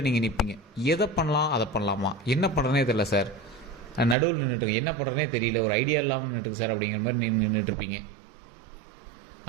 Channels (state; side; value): drops out; left; at 4.2 s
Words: நீங்கள் நிற்பீங்க. எதை பண்ணலாம் அதை பண்ணலாமா, என்ன பண்ணுறனே தெரியல சார், நடுவில் நின்றுட்டுருங்க, என்ன பண்ணுறனே தெரியல, ஒரு ஐடியா இல்லாமல் நின்றுட்டுருக்கு சார் அப்படிங்கிற மாதிரி நீங்கள் நின்றுட்டுருப்பீங்க.